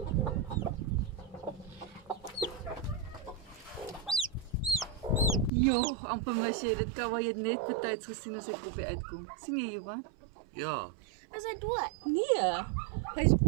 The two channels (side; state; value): left; drops out; at 5.5 s